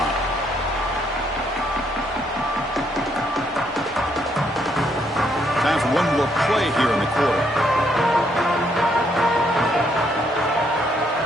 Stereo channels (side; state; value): both; normal; correlation 0.72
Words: Time for one more play here in the quarter.